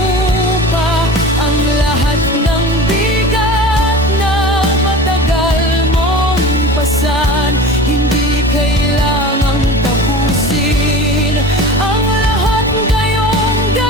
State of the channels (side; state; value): both; normal; correlation 0.36